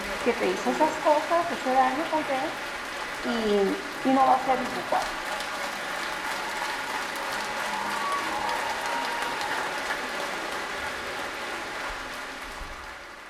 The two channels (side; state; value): both; identical; correlation 1.00